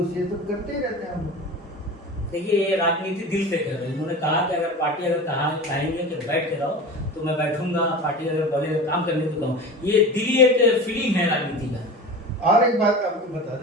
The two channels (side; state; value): both; normal; correlation 0.32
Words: ये सब करते ही रहते हैं हम लोग। देखिए, ये राजनीति दिल से कर रहे हैं। उन्होंने कहा कि अगर पार्टी अगर कहेंगे कि बैठ के रहो तो मैं बैठूंगा, पार्टी अगर बोले काम करने को कहूँ, ये दिली एक फीलिंग है राजनीति का। और एक बात आपको बता